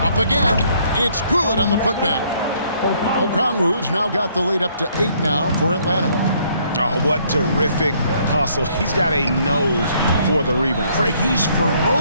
Up again. It's good on the putback. Okongwu's now got the lead up to 8 now for Atlanta. Oh, what terrific hustle. He's got a nose for the rebound. Craig, he's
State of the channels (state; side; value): inverted; both; correlation -0.66